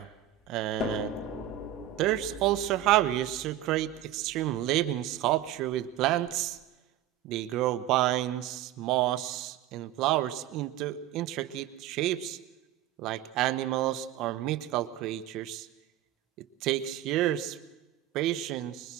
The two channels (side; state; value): left; quieter; 12.4 dB